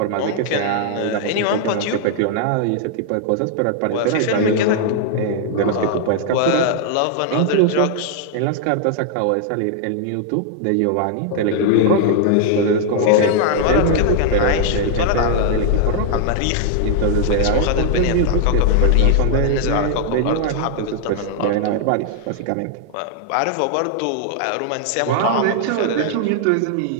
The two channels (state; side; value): different; both; correlation 0.00